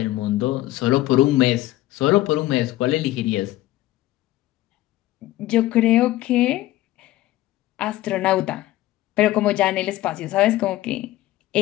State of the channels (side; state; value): right; quieter; 15.9 dB